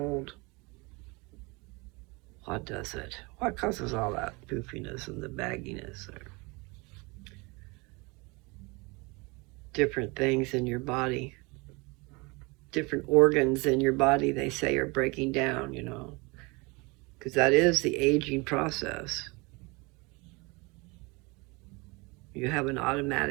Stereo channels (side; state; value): left; quieter; 26.7 dB